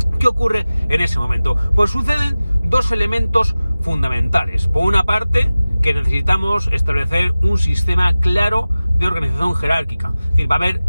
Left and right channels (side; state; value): both; inverted; correlation -0.96